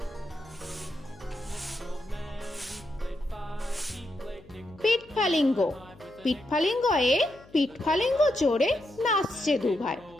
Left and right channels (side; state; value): left; noise; hum, 24 dB below the sound